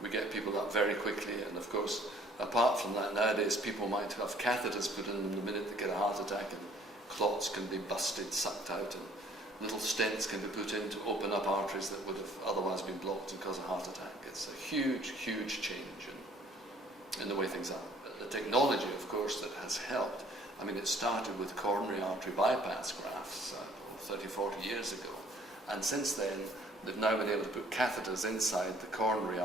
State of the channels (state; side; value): normal; both; correlation 0.58